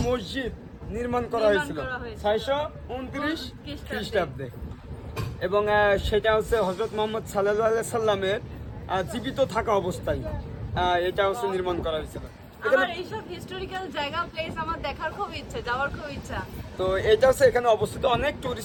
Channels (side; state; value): both; identical; correlation 1.00